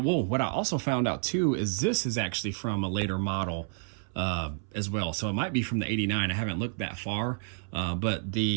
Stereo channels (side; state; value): left; silent; 58 dB below the other